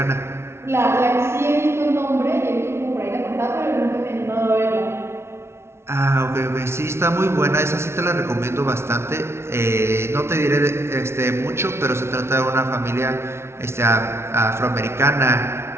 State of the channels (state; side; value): late; left; 0.12 ms